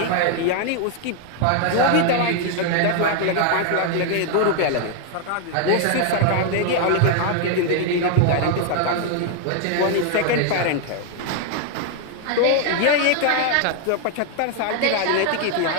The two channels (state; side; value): different; both; correlation 0.00